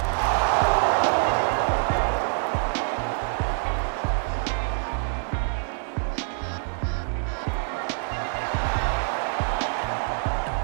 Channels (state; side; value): silent; left; 61 dB below the other